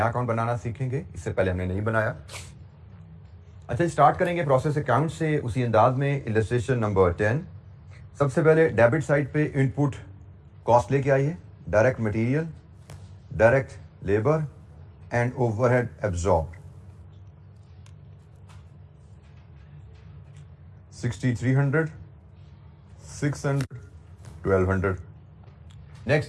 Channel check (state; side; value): identical; both; correlation 1.00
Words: अकाउंट बनाना सीखेंगे, इससे पहले हमने नहीं बनाया। अच्छा, स्टार्ट करेंगे प्रोसेस अकाउंट से उसी अंदाज में। Illustration number 10। सबसे पहले डेबिट साइड पे इनपुट कॉस्ट लेके आइए, direct material, direct labour and overhead absorb. 6300, 600, 1200। Next